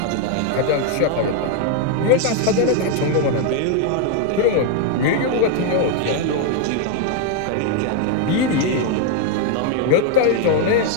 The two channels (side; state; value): both; different; correlation 0.01